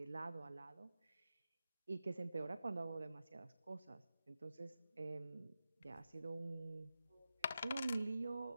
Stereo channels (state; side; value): inverted; both; correlation -0.91